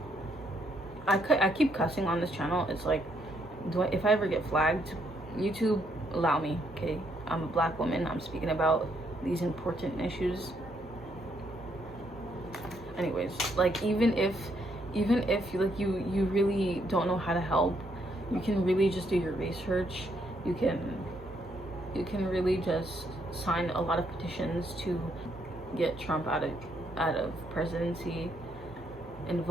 I keep cussing on this channel. It's like, if I ever get flagged, YouTube, allow me, okay? I'm a black woman. I'm speaking about these important issues. Anyways, like, even if you really don't know how to help, you can really just do your research. You can really just sign a lot of petitions to get Trump out of presidency,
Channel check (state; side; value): normal; both; correlation 0.73